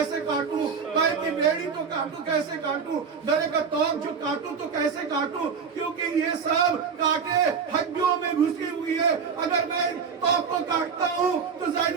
काटूं, पैर की बेड़ी तो काटूं कैसे काटूं, गले का तोक जो काटूं तो कैसे काटूं, क्योंकि ये सब कांटे हड्डियों में घुसी हुई है। अगर मैं तोक को काटता हूँ तो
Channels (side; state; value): left; quieter; 6.0 dB